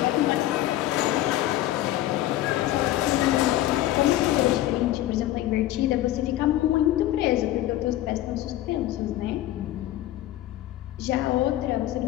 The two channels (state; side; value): quieter; right; 14.4 dB